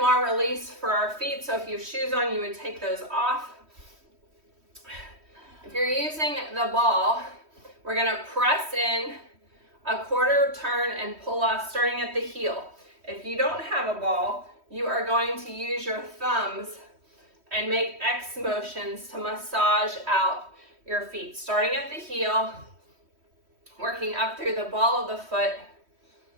release for our feet. So if you have shoes on, you would take those off. If you're using the ball, we're going to press in a quarter turn and pull off starting at the heel. If you don't have a ball, you are going to use your thumbs and make X motions to massage out your feet, starting at the heel, working up through the ball of the foot,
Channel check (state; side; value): late; left; 3.1 ms